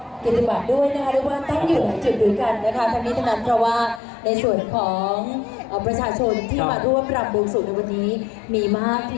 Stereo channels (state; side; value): drops out; right; at 4.0 s